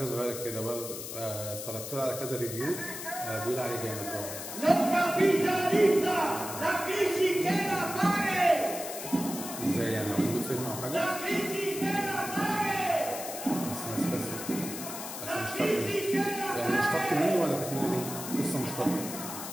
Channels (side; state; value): left; noise; hiss, 8 dB below the sound